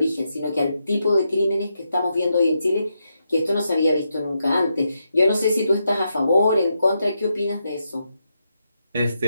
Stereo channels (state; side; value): inverted; both; correlation -0.83